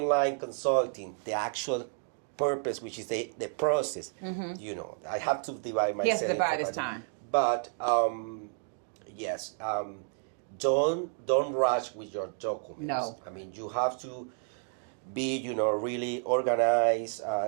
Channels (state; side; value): silent; left; 57 dB below the other